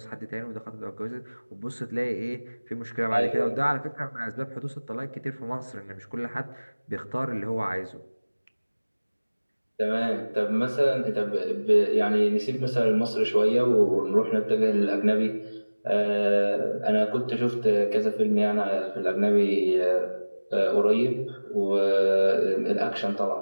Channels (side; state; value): both; inverted; correlation -1.00